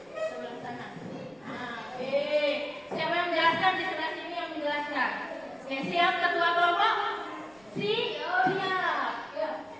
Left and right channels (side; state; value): right; noise; rumble, 29 dB below the sound